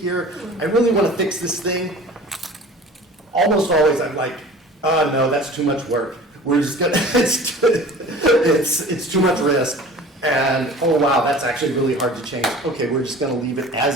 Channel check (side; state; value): both; normal; correlation 0.43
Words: I really want to fix this thing. Almost always I'm like, no, that's too much work. We're just gonna, it's too much risk. And, oh wow, that's actually really hard to change. Okay, we're just gonna leave it